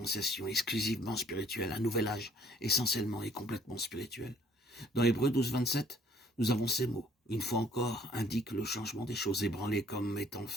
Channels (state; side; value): normal; both; correlation 0.60